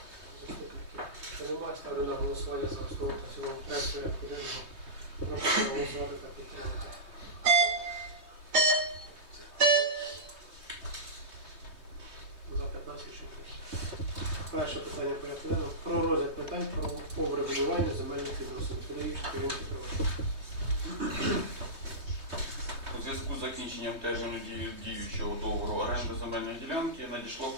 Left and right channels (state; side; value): late; left; 3.2 ms